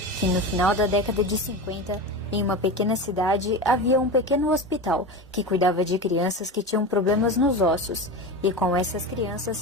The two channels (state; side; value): normal; both; correlation 0.25